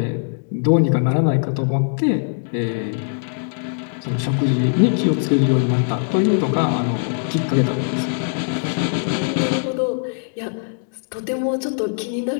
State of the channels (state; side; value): silent; right; digital silence